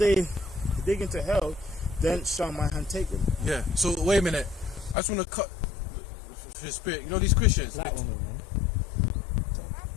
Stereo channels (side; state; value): right; drops out; at 5.0 s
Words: dig into hell, then shall my hand take them. Yeah. So wait a minute. I just want to cut his spirit. These Christians. Black woman, man.